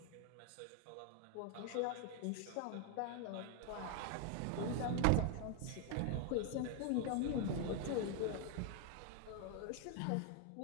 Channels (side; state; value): both; different; correlation 0.00